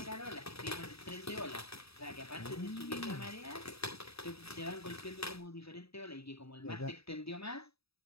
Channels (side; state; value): right; late; 0.77 ms